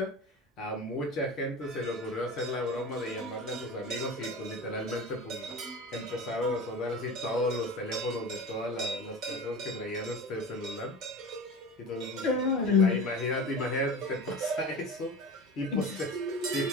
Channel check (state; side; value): normal; both; correlation 0.32